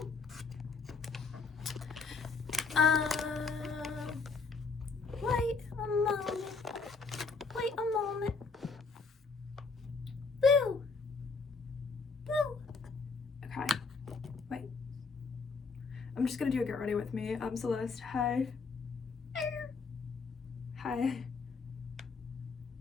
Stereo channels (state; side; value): quieter; right; 4.6 dB